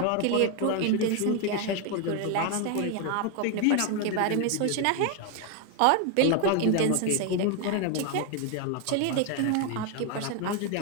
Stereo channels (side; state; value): both; different; correlation 0.01